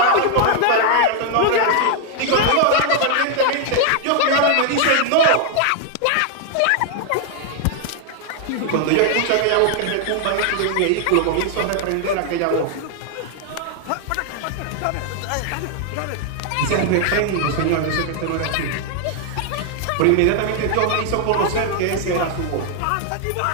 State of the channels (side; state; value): both; different; correlation 0.00